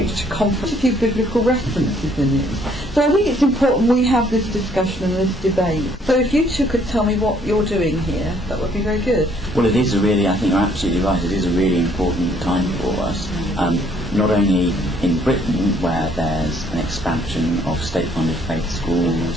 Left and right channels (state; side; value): normal; both; correlation 0.64